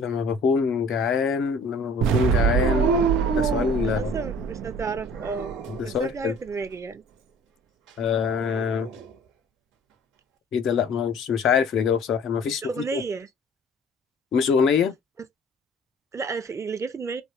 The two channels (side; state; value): both; normal; correlation 0.49